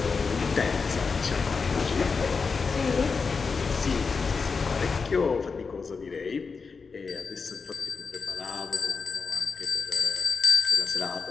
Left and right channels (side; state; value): right; quieter; 5.0 dB